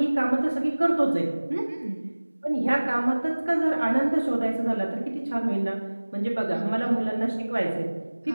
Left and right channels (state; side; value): inverted; both; correlation -1.00